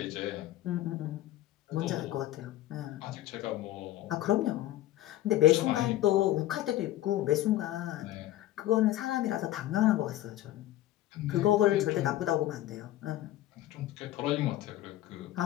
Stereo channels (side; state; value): right; quieter; 14.4 dB